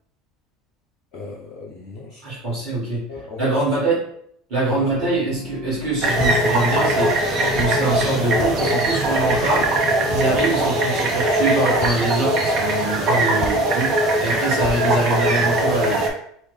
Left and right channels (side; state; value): both; normal; correlation 0.40